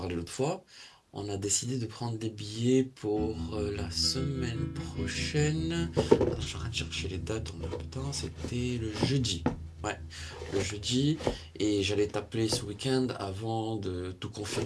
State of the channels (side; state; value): both; identical; correlation 1.00